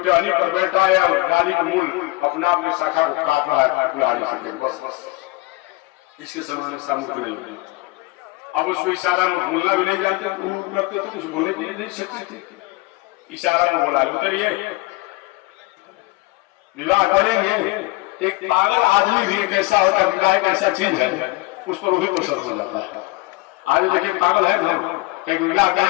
पर बैठा है और डाली का मूल अपना अपने शाखा को काट रहा है कुल्हाड़ी से। बस इसके समान सामूहिक नहीं है। अब उसको इशारा में बोलना भी नहीं जानते, करते तो कुछ बोलने के लिए नहीं सकते थे, इशारा में बोला उतरिए विवाह करेंगे। एक पागल आदमी भी कैसा होता है, विवाह एक ऐसा चीज है उस पर वही प्रसन्न हो जाता है। आज देखिए पागल है ना, कहीं विवाह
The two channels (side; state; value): right; quieter; 22.1 dB